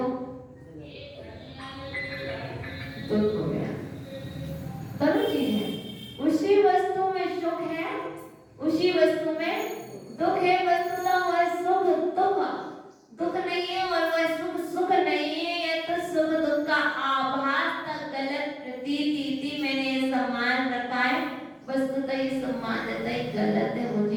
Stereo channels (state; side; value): identical; both; correlation 1.00